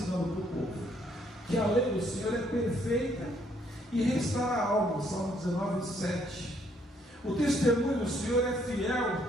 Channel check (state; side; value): normal; both; correlation 0.68